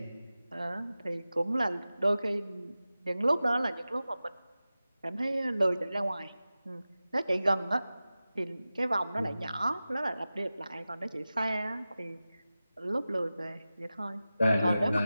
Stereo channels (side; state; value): both; inverted; correlation -0.95